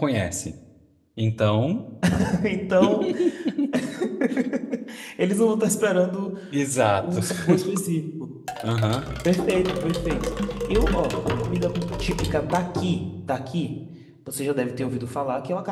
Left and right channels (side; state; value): both; identical; correlation 1.00